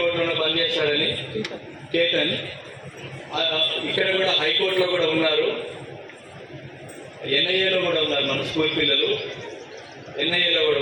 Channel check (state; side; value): identical; both; correlation 1.00